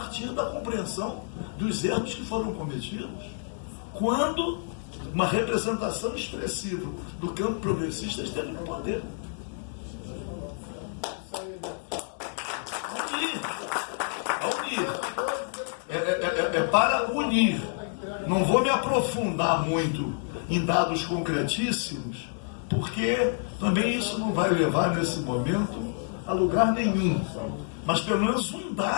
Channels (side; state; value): right; silent; 59 dB below the other